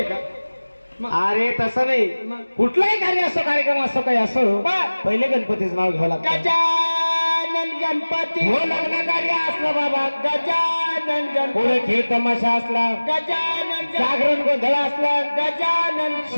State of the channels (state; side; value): inverted; both; correlation -1.00